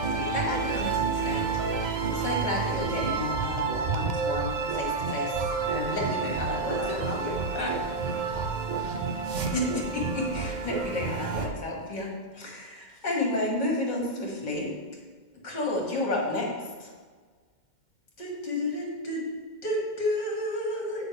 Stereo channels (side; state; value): right; late; 2.1 ms